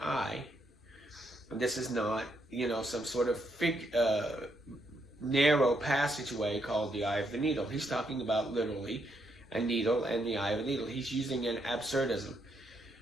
eye. And this is not, some sort of narrow passageway called the eye of the needle. He's talking about literally a needle and the eye of a needle. He's using an absurdism.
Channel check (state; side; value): normal; both; correlation 0.77